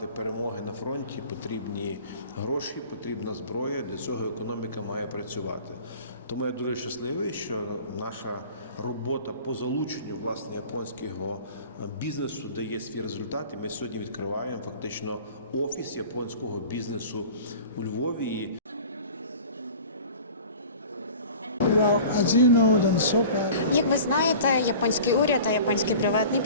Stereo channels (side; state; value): both; inverted; correlation -0.42